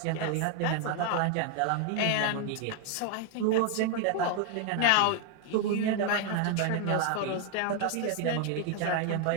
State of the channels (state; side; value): different; both; correlation 0.00